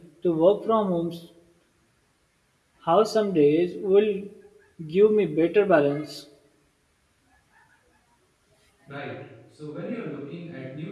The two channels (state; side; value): identical; both; correlation 1.00